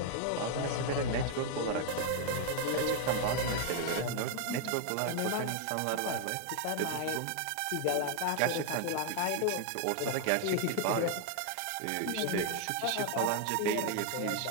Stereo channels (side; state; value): both; different; correlation 0.00